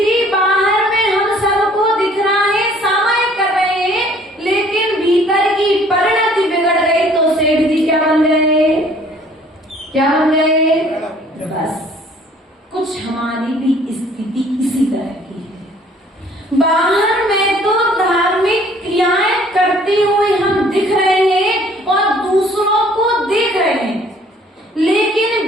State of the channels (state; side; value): normal; both; correlation 0.56